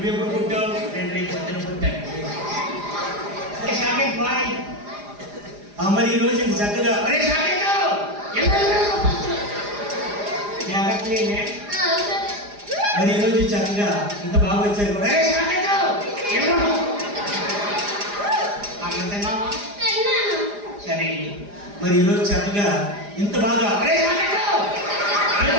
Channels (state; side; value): late; left; 4.9 ms